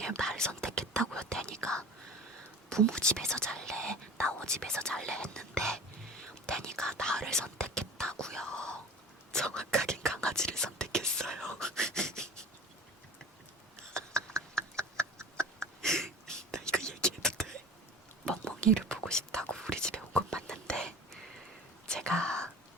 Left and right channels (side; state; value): both; normal; correlation 0.39